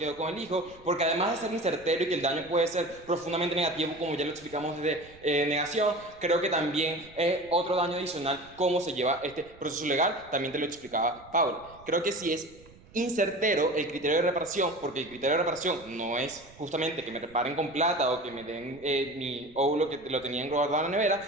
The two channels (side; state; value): right; noise; rumble, 24 dB below the sound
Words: con el hijo, porque además de ser incertero y que el daño puede ser profundamente negativo, como ya lo explicamos desde negación, creo que también es otro daño adicional cómo se lleva este proceso legal, también te lo explicaba Pablo. Creo que si es incertero el criterio de reparación, porque el criterio de reparación no es justamente que me reparen con plata o que me den mi óvulo que lo tenían guardado en la